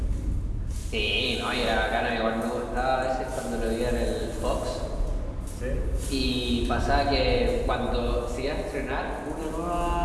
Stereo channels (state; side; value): identical; both; correlation 1.00